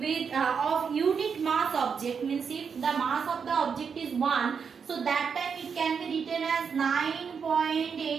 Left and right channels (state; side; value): quieter; left; 6.3 dB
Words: of unit mass object, means if the mass of the object is 1, so that time it can be written as